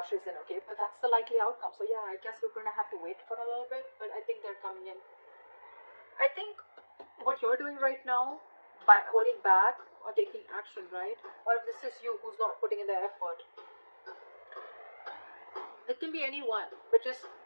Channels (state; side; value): inverted; both; correlation -1.00